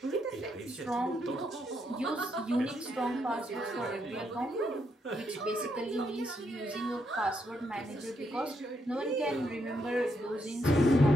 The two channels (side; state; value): both; normal; correlation 0.78